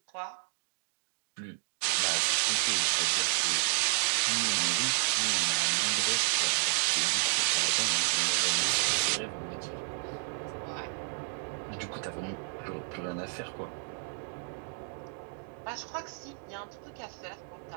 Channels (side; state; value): left; silent; 57 dB below the other